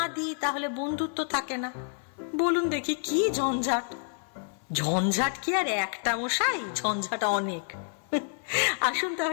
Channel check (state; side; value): silent; right; 59 dB below the other